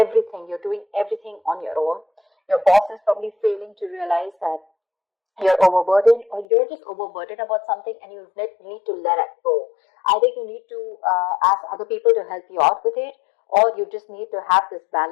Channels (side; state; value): right; drops out; at 6.5 s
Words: you're doing everything on your own. Your boss is probably failing to realize that you're overburdened, or you're just overburdened about something and you need to let it go. Either you need to ask other people to help you out with it, or you just need to have this